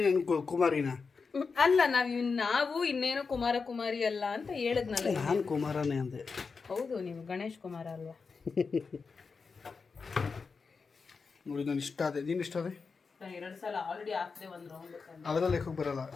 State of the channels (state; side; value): quieter; right; 4.9 dB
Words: ಕುಮಾರಿನ? ಅಲ್ಲ, ನಾವು ಇನ್ನೇನು ಕುಮಾರ ಕುಮಾರಿ ಅಲ್ಲ ಅಂತ ಹೇಳಿದ್ನಲ್ಲ. ನಾನು ಕುಮಾರನೇ ಅಂದೆ. ಹೌದು, ನೀವು ಗಣೇಶ್ ಕುಮಾರ ಅಲ್ವಾ? ನೋಡಿ ನಾನು ಇಷ್ಟ ಅದೇ, ನೀನು ಇಷ್ಟ ಅದೇ. 2 ಸಲ ಆಲ್ರೆಡಿ ಹಾಕ್ದೆ ಒಂದು ರೌಂಡ್. ಅವೆಲ್ಲ ಲೆಕ್ಕಕ್ಕೆ ಬರಲ್ಲ.